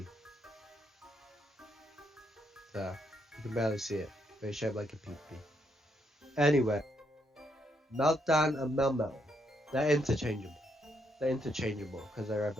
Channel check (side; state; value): both; normal; correlation 0.76